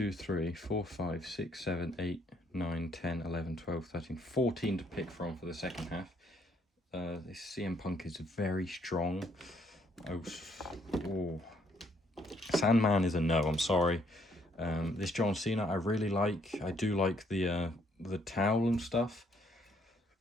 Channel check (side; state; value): both; normal; correlation 0.69